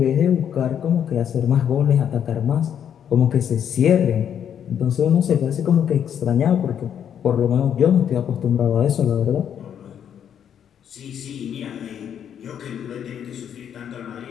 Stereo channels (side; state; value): right; quieter; 8.9 dB